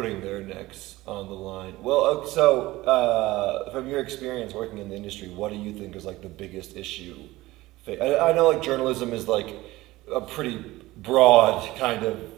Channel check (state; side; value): quieter; left; 18.4 dB